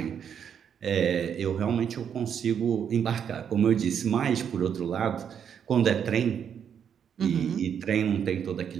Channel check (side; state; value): left; quieter; 8.1 dB